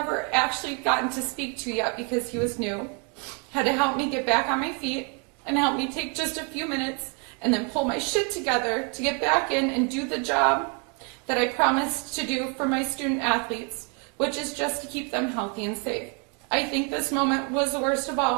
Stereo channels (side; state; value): left; quieter; 36.2 dB